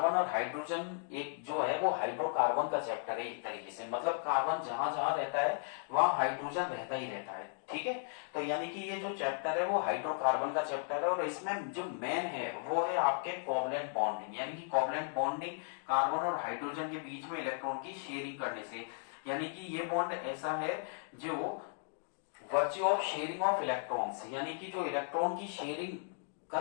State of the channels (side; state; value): right; silent; digital silence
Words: और हाइड्रोजन एक जो है वो हाइड्रोकार्बन का चैप्टर है एक तरीके से, मतलब कार्बन जहां जहां रहता है वहां हाइड्रोजन रहता ही रहता है, ठीक है। तो यानी कि ये जो चैप्टर है वो हाइड्रोकार्बन का चैप्टर है और इसमें जो मेन है वो है आपके कोवलेंट बॉन्डिंग, यानी कि कोवलेंट बॉन्डिंग कार्बन और हाइड्रोजन के बीच में इलेक्ट्रॉन की शेयरिंग करने से, यानी कि ये बॉन्ड ऐसा है जो virtue of sharing of electrons, यानी कि जो इलेक्ट्रॉन की शेयरिंग